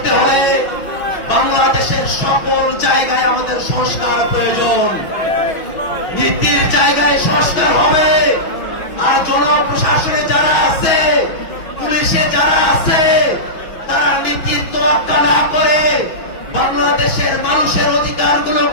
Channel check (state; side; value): late; right; 6.2 ms